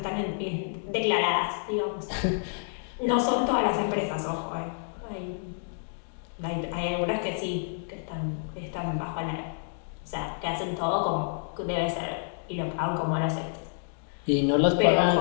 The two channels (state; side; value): silent; right; digital silence